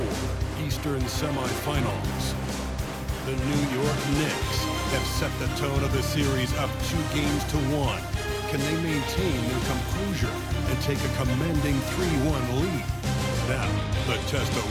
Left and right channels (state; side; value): identical; both; correlation 1.00